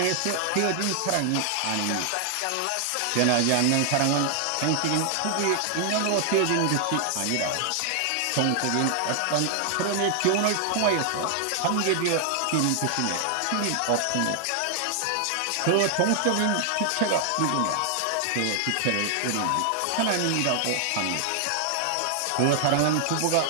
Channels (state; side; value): different; both; correlation 0.00